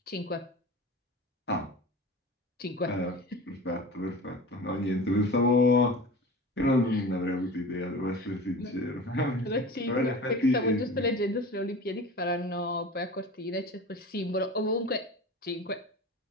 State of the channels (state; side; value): normal; both; correlation 0.35